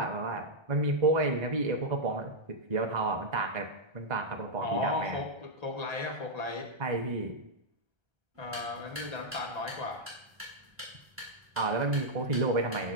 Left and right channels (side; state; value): left; late; 1.3 ms